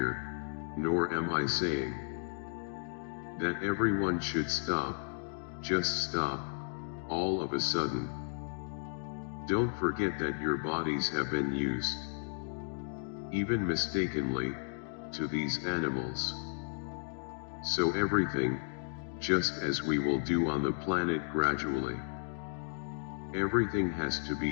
nor am I saying, that everyone should stop, just stop, all of a sudden. Don't forget that your bodies have been used, even mistakenly, to these animals. So everything, just as we will do on the planet gradually, everything has to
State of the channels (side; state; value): right; silent; digital silence